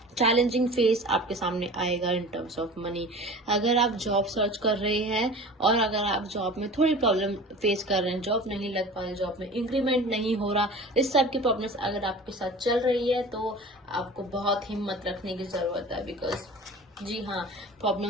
चैलेंजिंग फेस आपके सामने आएगा इन टर्म्स ऑफ मनी। अगर आप जॉब सर्च कर रहे हैं और अगर आप जॉब में थोड़ी प्रॉब्लम फेस कर रहे हैं, जॉब नहीं लग पा रही, जॉब में इंक्रीमेंट नहीं हो रहा, इस सब की प्रॉब्लम्स अगर आपके साथ चल रही है तो आपको बहुत हिम्मत रखने की जरूरत है, बिकॉज जी हाँ,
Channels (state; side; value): normal; both; correlation 0.39